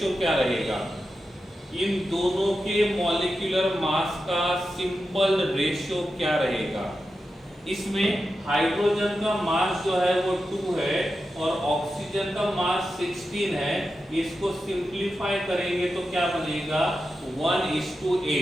क्या रहेगा? इन दोनों के मॉलिक्यूलर मास का सिंपल रेशो क्या रहेगा? इसमें हाइड्रोजन का मास जो है वो 2 है और ऑक्सीजन का मास 16 है। इसको सिंपलीफाई करेंगे तो क्या बनेगा?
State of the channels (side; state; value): both; normal; correlation 0.90